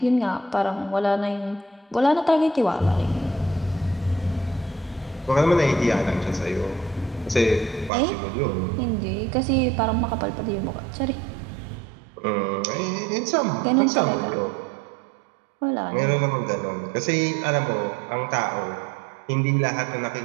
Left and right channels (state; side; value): drops out; left; at 7.9 s